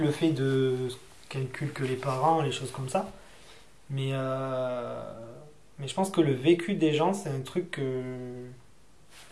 le fait de calculer que les parents, les choses comme ça. Mais, mais je pense que le vécu des gens, c'est un truc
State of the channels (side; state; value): both; identical; correlation 1.00